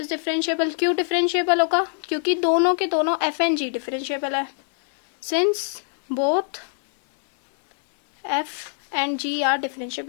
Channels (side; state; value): right; silent; digital silence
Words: differentiable क्यों डिफरेंशिएबल होगा, क्योंकि दोनों के दोनों एफ एंड जी डिफरेंशिएबल है, since both f and g are